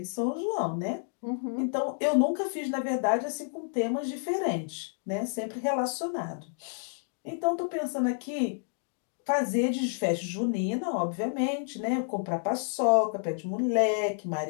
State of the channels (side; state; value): right; silent; digital silence